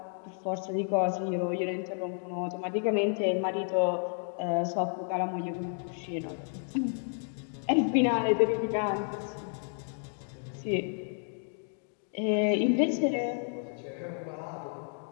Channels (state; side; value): silent; right; 57 dB below the other